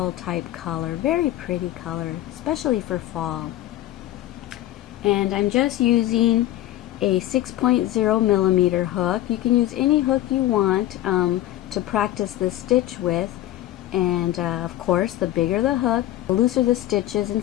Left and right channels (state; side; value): quieter; right; 14.2 dB